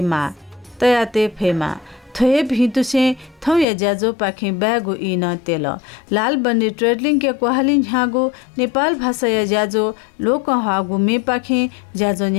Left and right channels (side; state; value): right; drops out; at 3.7 s